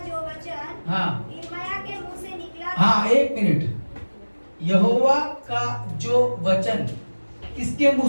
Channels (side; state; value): both; inverted; correlation -1.00